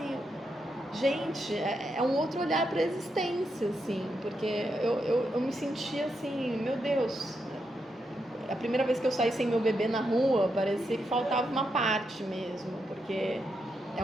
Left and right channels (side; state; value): both; normal; correlation 0.83